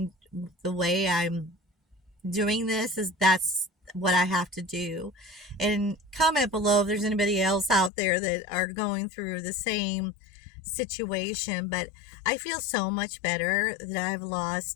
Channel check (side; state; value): right; drops out; at 7.9 s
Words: way I'm doing this is that's what I have to do. And comment below if there's anybody else out there that are going through the same situation. But I feel so much better that I've